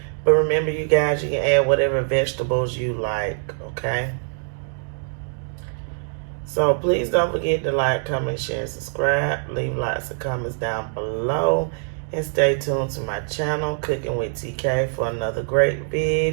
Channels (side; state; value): left; silent; digital silence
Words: But remember, you guys, you can add whatever vegetables you like, okay? So please don't forget to like, comment, share, and subscribe. Leave lots of comments down below. And stay tuned to my channel, Cooking with TK, for another great